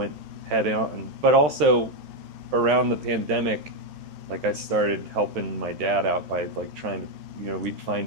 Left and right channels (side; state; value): left; late; 13 ms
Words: head on. But also around the pandemic, like I started helping my dad out by like trying to, you know, we'd